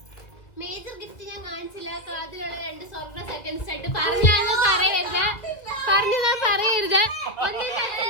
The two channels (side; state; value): right; late; 1.9 ms